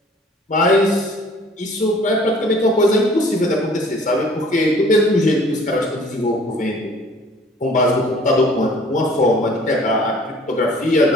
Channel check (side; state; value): both; normal; correlation 0.52